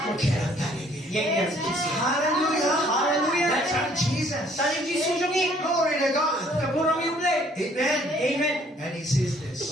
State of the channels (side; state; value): both; normal; correlation 0.60